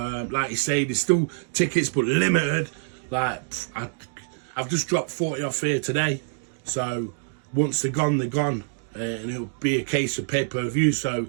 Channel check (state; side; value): silent; left; digital silence